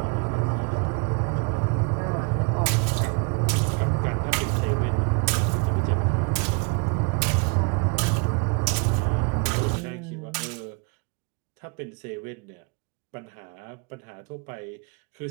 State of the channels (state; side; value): quieter; left; 31.7 dB